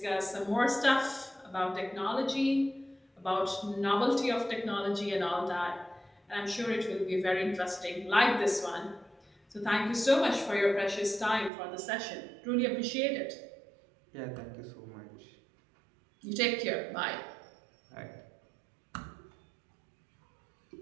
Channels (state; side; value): drops out; left; at 11.5 s